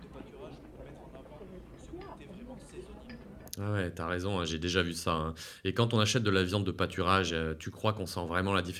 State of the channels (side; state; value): both; identical; correlation 1.00